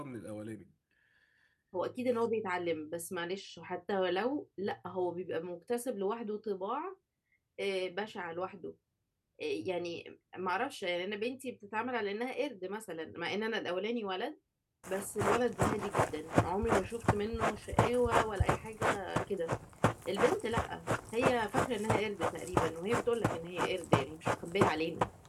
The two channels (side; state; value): both; identical; correlation 1.00